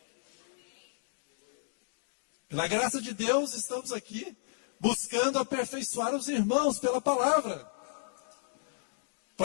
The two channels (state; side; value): silent; right; digital silence